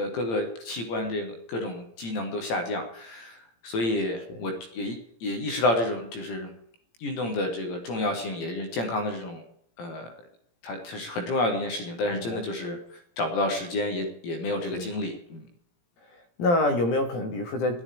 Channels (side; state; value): right; late; 17 ms